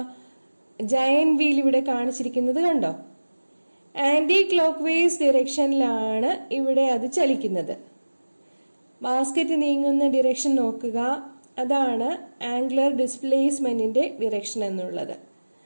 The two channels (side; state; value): both; inverted; correlation -1.00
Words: ജയന്റ് വീൽ ഇവിടെ കാണിച്ചിരിക്കുന്നത് കണ്ടോ? ആന്റി ക്ലോക്ക് വൈസ് ഡിറക്ഷനിലാണ് ഇവിടെ അത് ചലിക്കുന്നത്. ബാസ്കറ്റ് നീങ്ങുന്ന ഡിറക്ഷൻ നോക്കുക. അതാണ് ആംഗുലർ ഡിസ്പ്ലേസ്മെന്റിന്റെ ഡിറക്ഷൻ എന്നുള്ളത്.